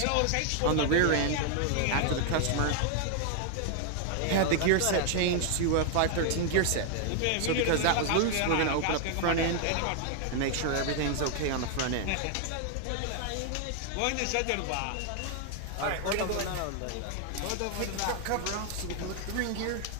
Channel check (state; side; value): different; both; correlation 0.00